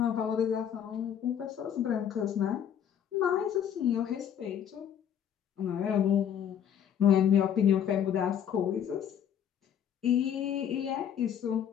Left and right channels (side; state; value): right; quieter; 9.1 dB